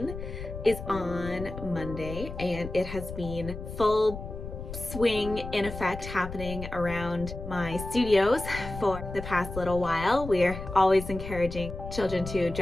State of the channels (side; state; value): left; noise; rumble, 9 dB below the sound